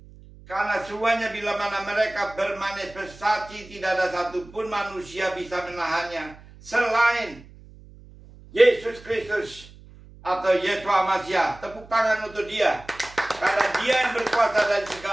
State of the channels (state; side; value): noise; right; hum, 21 dB below the sound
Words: karena semuanya bila mana mereka bermanifestasi, tidak ada satupun manusia bisa menahannya selain Yesus Kristus atau Yeshua Mashiach. Tepuk tangan untuk Dia, karena Dia yang berkuasa dari